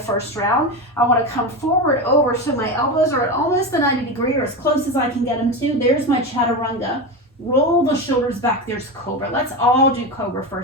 round. I want to come forward over so my elbows are at almost the 90 degree or as close as I can get them to. There's my Chaturanga. Roll the shoulders back. There's Cobra. Let's all do Cobra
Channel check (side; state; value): both; normal; correlation 0.19